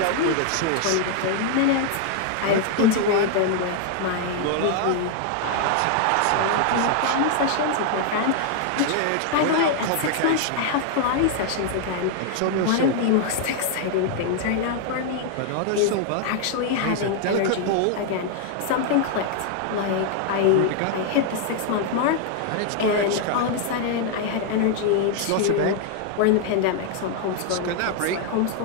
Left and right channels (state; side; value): different; both; correlation 0.00